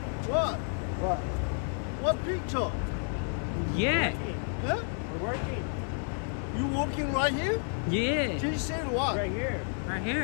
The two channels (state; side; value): silent; right; 57 dB below the other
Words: What? What picture? Yeah. Huh? We're working. You working right here? Yeah. She said what? Right here. Right